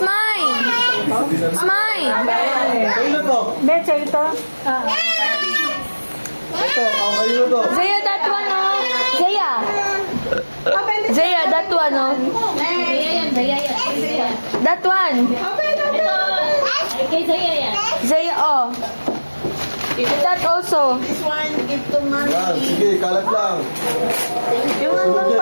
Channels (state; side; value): inverted; both; correlation -1.00